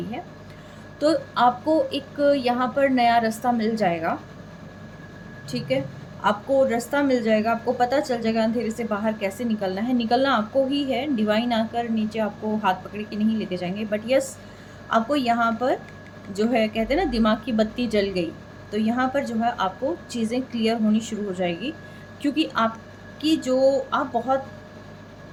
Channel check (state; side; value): identical; both; correlation 1.00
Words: है, तो आपको एक यहाँ पर नया रास्ता मिल जाएगा, ठीक है। आपको रास्ता मिल जाएगा, आपको पता चल जाएगा अंधेरे से बाहर कैसे निकलना है। निकलना आपको ही है, डिवाइन आकर नीचे आपको हाथ पकड़ के नहीं लेके जाएंगे, बट यस, आपको यहाँ पर जो है कहते हैं ना, दिमाग की बत्ती जल गई, तो यहाँ पर जो है आपको चीज़ें क्लियर होनी शुरू हो जाएगी, क्योंकि आपकी जो आप बहुत